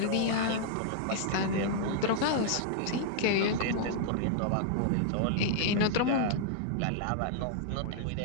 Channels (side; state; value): both; different; correlation -0.01